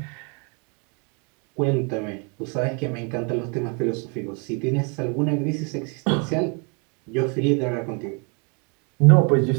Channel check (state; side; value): quieter; left; 35.3 dB